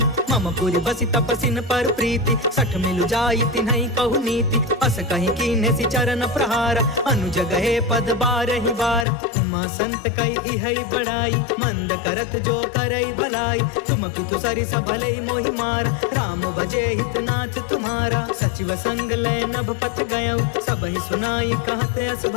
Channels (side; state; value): right; drops out; at 9.1 s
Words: मम पुरि बसि तपसिन पर प्रीति सठ मिलु जाई तिन्हई कहु नीति अस कहि कीन्हे सि चरण प्रहार अनुज गए पद बारहि बार उमा संत कई इहई बड़ाई मंद करत जो करई भलाई तुम पितु सरिस भलई मोहि मारा राम भजे हितनाथ तुम्हारा सचिव संग लय नभ पथ गयउ सब ही सुनाई कहत अस